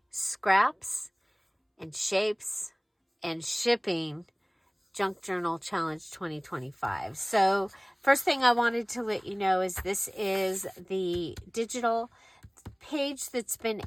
Scraps and Shapes and Shipping Junk Journal Challenge 2025. So first thing I wanted to let you know is this is the digital page that's been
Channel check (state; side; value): identical; both; correlation 1.00